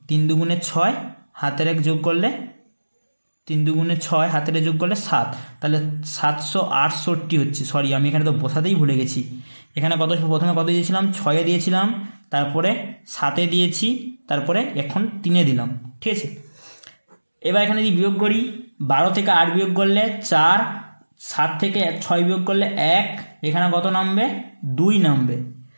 3 দুগুণে 6, হাতের 1 যোগ করলে 3 দুগুণে 6, হাতের যোগ করলে 7, তাহলে 768 হচ্ছে। সরি, আমি এখানে তো বসাতেই ভুলে গেছি। এখানে প্রথমে কত দিয়েছিলাম? 6-এ দিয়েছিলাম, তারপরে 7-এ দিয়েছি, তারপরে এখন 3-এ দিলাম। ঠিক আছে, এবার এখানে যদি বিয়োগ করি, 12 থেকে 8 বিয়োগ করলে 4, 7 থেকে 6 বিয়োগ করলে 1, এখানে কত নামবে? 2 নামবে।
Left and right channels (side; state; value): both; inverted; correlation -1.00